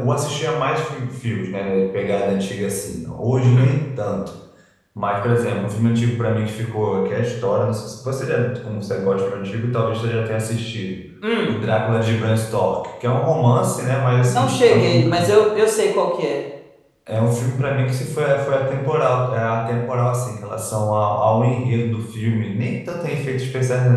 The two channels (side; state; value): both; identical; correlation 1.00